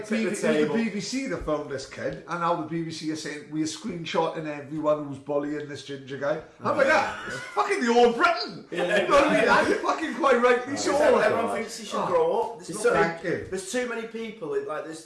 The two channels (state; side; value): identical; both; correlation 1.00